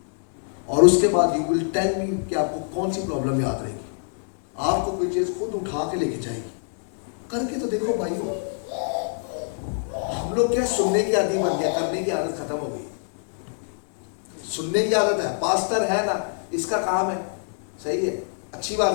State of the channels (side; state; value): right; silent; digital silence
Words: और उसके बाद यू विल टेल मी कि आपको कौन सी प्रॉब्लम याद रहेगी। आपको कोई चीज खुद उठा के लेके जाएगी। करके तो देखो भाइयों। हम लोग क्या सुनने की आदत बन गया, करने की आदत खत्म हो गई। सुनने की आदत है, पास्टर है ना, इसका काम है, सही है, अच्छी